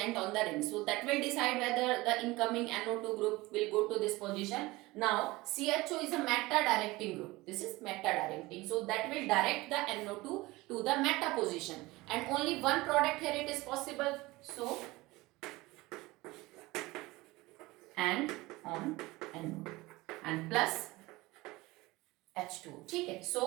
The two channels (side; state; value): left; quieter; 20.8 dB